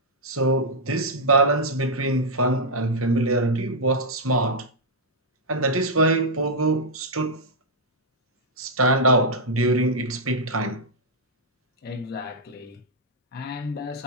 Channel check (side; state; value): both; normal; correlation -0.05